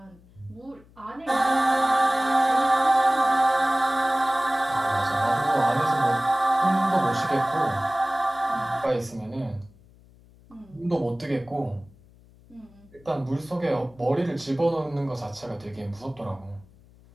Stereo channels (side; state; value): left; noise; hum, 26 dB below the sound